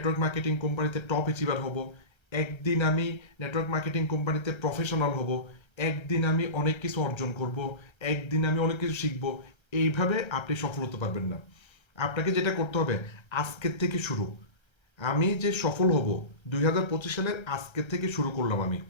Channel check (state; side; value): late; right; 1.3 ms